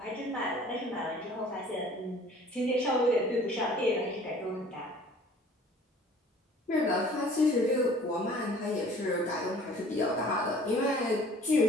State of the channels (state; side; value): normal; both; correlation 0.51